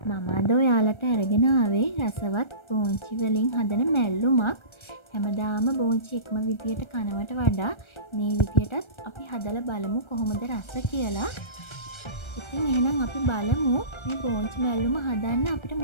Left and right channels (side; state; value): right; late; 1.3 ms